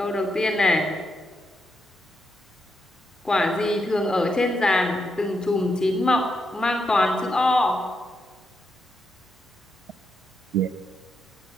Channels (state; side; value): normal; both; correlation 0.82